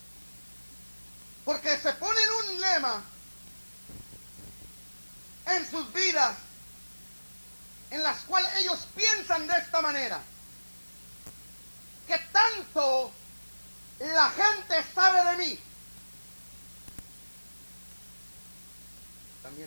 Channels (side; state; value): both; inverted; correlation -1.00